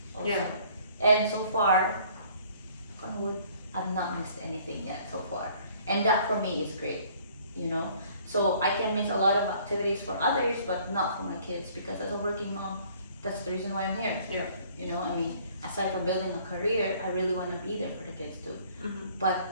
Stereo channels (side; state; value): both; inverted; correlation -0.57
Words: also. Yeah. And so far, I've not missed anything yet so far. And that for me is great, So I can miss a lot of activities for others, but not for my kids, because as a working mom, that's the reason why I'm here. Yeah. Aside from building a career, I really want to be there for the kids too. Mm-hmm. But